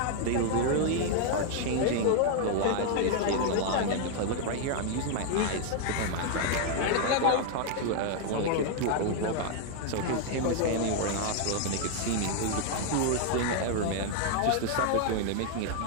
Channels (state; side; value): different; both; correlation 0.00